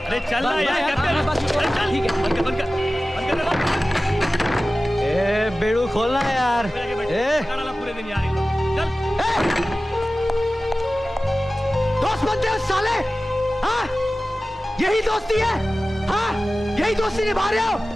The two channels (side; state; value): both; normal; correlation 0.96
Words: चल ना यार, ठीक है, ए बेड़ू खोलना यार, पूरे दिन यार। दोस्त बनते हो साले, हाँ? यही दोस्ती है, हाँ? यही दोस्ती निभा रहे हो?